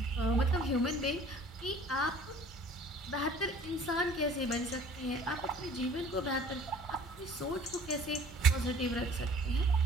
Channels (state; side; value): normal; both; correlation 0.50